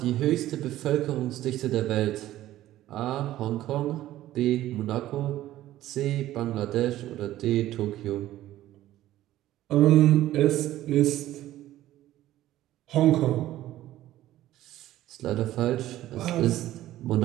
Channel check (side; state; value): left; quieter; 14.3 dB